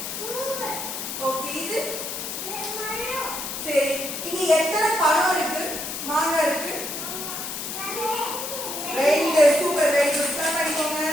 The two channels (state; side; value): noise; left; hiss, 6 dB below the sound